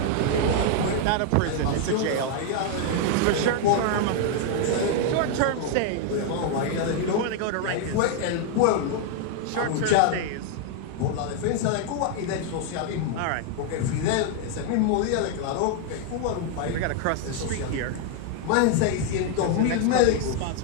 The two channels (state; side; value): different; both; correlation 0.00